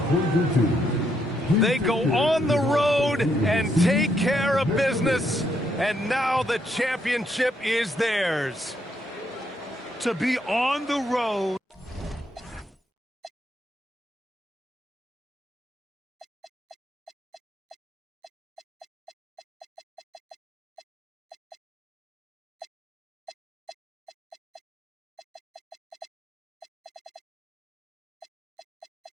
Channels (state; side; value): normal; both; correlation 0.76